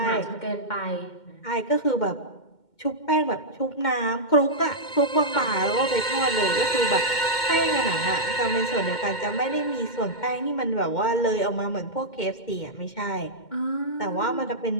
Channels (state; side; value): late; right; 2.1 ms